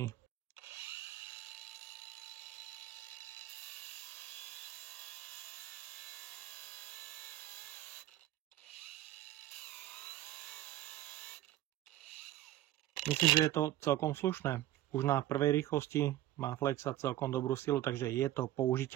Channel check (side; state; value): left; quieter; 14.3 dB